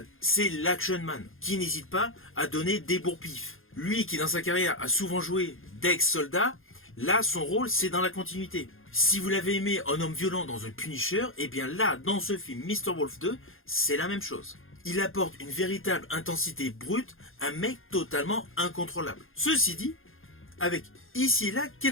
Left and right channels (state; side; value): late; right; 0.60 ms